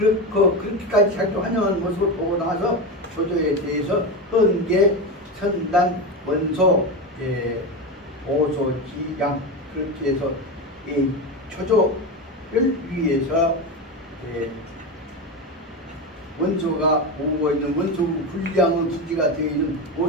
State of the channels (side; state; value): both; normal; correlation 0.18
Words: 자기 환영한 모습을 보고 나서 조조에 대해서 헌계 선단 원소 오소지양 그렇게 해서 이 조조를 위해서 원소가 보고 있는 원소 불량의 기지가 되어 있는